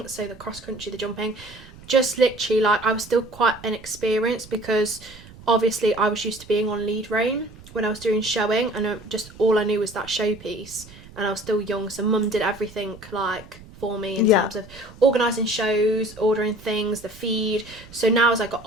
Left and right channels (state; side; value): noise; right; rumble, 20 dB below the sound